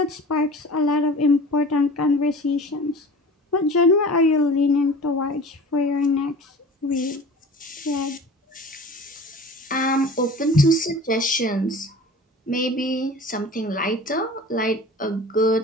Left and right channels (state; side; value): normal; both; correlation 0.40